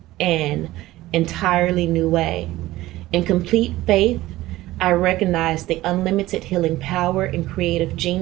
entirely new way. In complete faith, I recognize the unlimited healing power and creative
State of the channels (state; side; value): quieter; left; 16.8 dB